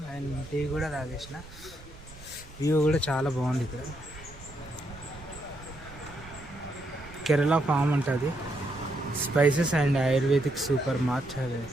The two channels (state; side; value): noise; right; rumble, 19 dB below the sound